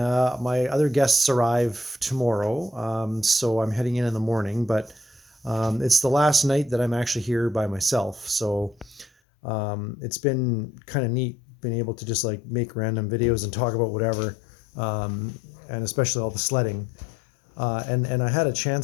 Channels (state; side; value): drops out; right; at 9.1 s